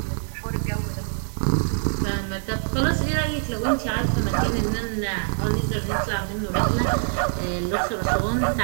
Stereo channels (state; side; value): silent; left; digital silence